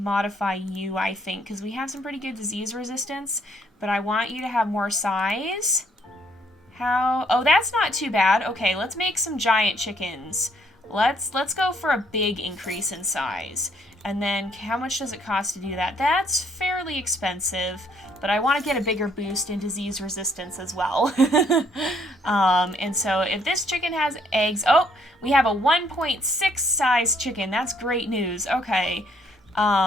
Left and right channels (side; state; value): both; normal; correlation 0.68